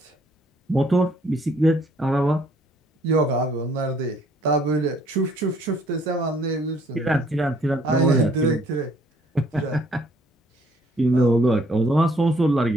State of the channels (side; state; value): both; normal; correlation 0.63